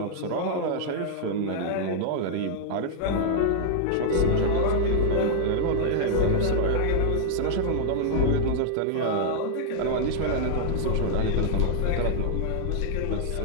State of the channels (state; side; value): different; both; correlation -0.01